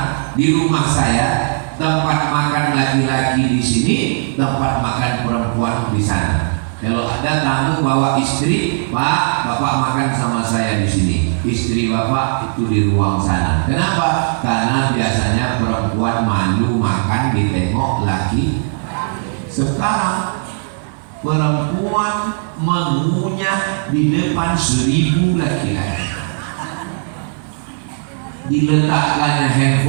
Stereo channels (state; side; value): silent; left; 65 dB below the other